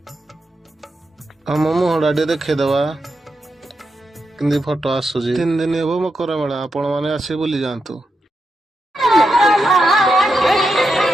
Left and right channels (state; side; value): normal; both; correlation 0.86